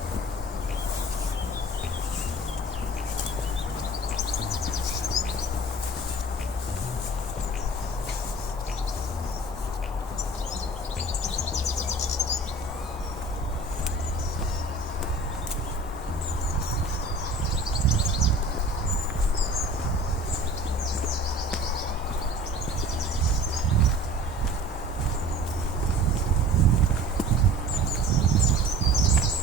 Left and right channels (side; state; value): both; normal; correlation 0.44